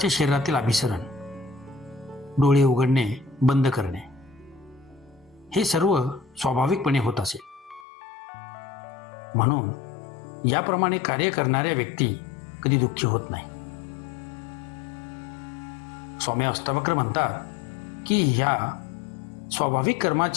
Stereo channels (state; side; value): drops out; right; at 7.9 s